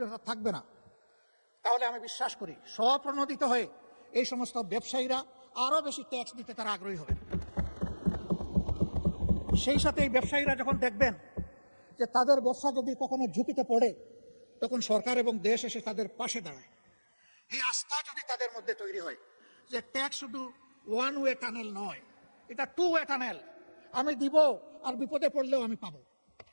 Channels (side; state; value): both; inverted; correlation -1.00